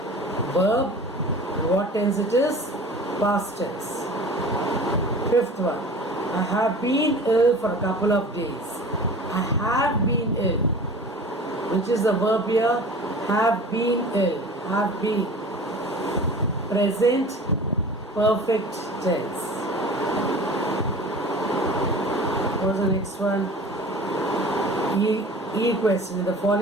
verb. What tense it is? Past tense. Fifth one. I have been ill for a couple of days. I have been ill. Which is the verb here? Have been ill. Have been. Present perfect tense. What is the next one? E question. In the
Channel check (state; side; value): normal; both; correlation 0.40